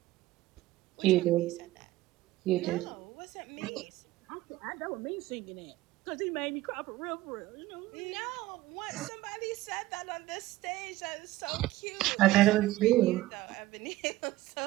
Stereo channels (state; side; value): quieter; left; 16.7 dB